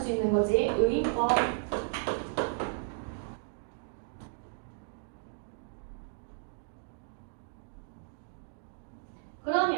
있는 거지. 의인법.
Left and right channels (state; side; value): silent; left; digital silence